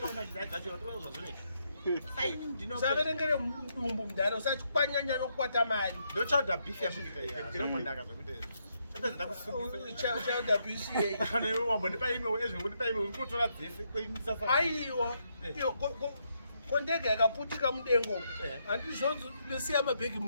usaverengere mudumbu mudhara usati kwanyanya nokukwata mari. ndochauda beef yamuita ndinombondaka zvakuti Chauda BCA. wambondipa imwe ezvondipa imwe urikutora dzese kweinisasa. Aiwa. Kondege yakaputika mudengo. Handizvonzo ndosiya mabhegi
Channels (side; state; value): both; inverted; correlation -0.78